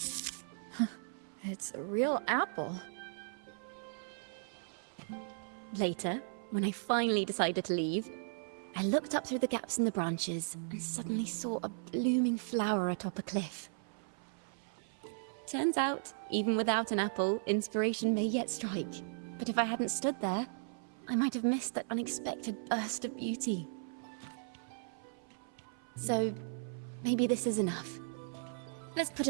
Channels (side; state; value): left; silent; 53 dB below the other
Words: It's a real apple. Later, when I finally decided to leave, I looked up through the gaps in the branches and suddenly saw a blooming flower atop a cliff. Turns out, even without an apple, inspiration may yet strike. But if I hadn't stood there, I might have missed that unexpected burst of beauty. So, maybe this is enough. Let's put